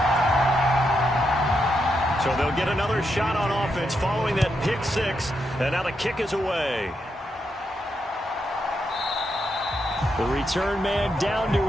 So they'll get another shot on offense following that pick six, and now the kick is away. The return man down to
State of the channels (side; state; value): both; normal; correlation 0.82